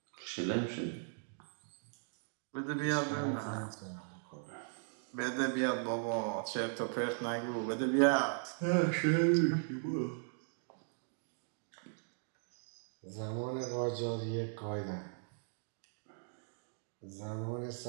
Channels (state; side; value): silent; left; digital silence